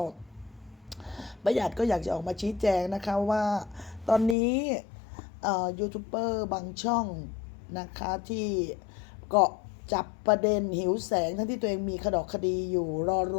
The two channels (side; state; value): right; drops out; at 4.4 s